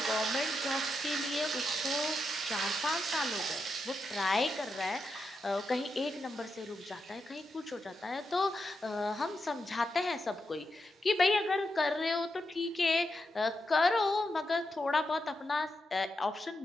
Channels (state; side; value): normal; both; correlation 0.86